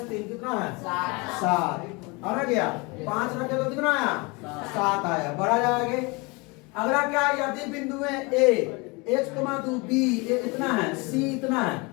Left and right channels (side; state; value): right; quieter; 27.5 dB